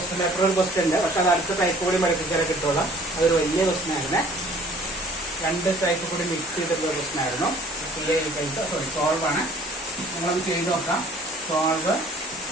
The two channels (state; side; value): normal; both; correlation 0.53